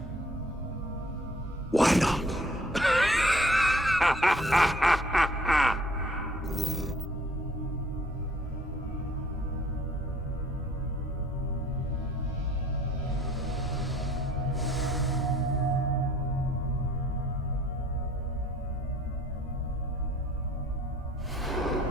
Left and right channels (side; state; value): both; normal; correlation 0.57